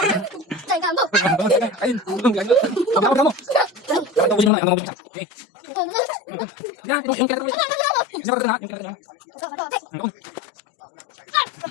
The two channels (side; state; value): right; drops out; at 4.5 s